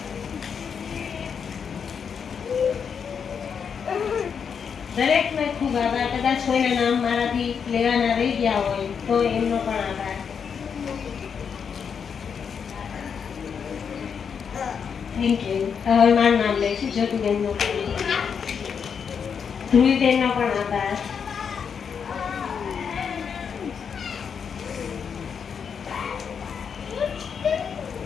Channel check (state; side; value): quieter; right; 6.8 dB